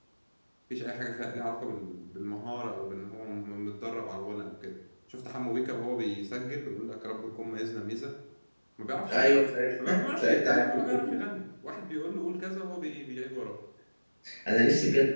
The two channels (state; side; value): inverted; both; correlation -1.00